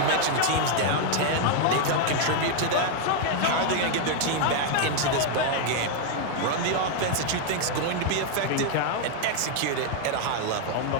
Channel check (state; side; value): different; both; correlation 0.00